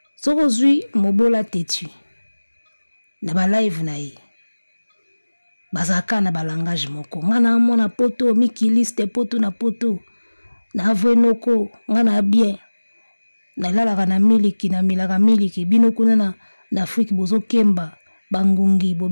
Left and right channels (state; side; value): inverted; both; correlation -1.00